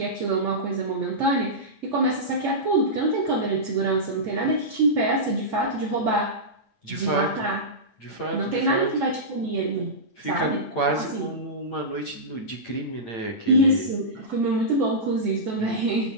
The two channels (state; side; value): late; right; 8.8 ms